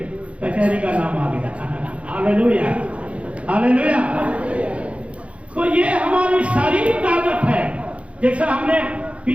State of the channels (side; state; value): left; late; 0.062 ms